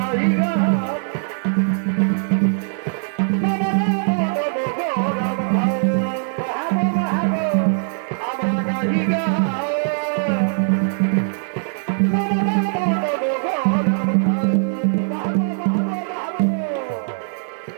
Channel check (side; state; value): left; silent; digital silence